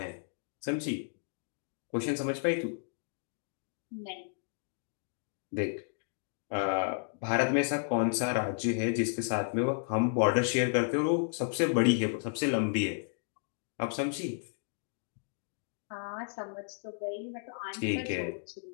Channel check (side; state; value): right; silent; digital silence